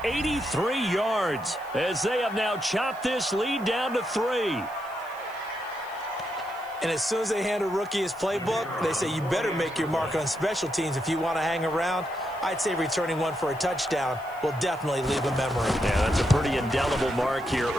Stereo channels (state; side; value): noise; left; hiss, 25 dB below the sound